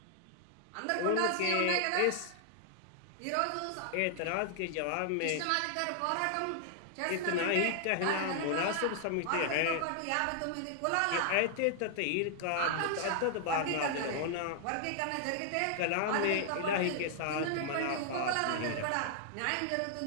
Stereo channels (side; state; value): both; different; correlation 0.00